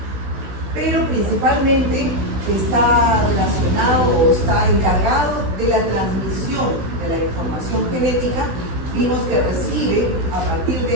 Pero principalmente está relacionado o está encargado de la transmisión de la información genética. Vimos que recibe, a partir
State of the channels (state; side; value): late; left; 16 ms